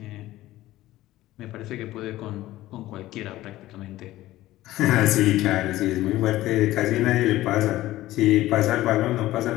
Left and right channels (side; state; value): right; quieter; 15.9 dB